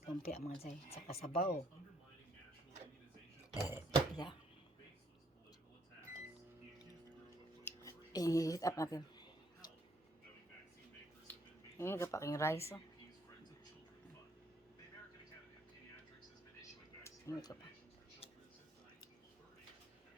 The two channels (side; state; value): both; normal; correlation 0.68